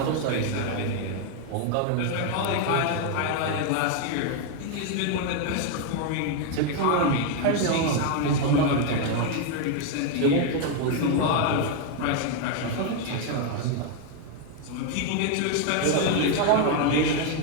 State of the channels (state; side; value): different; both; correlation 0.01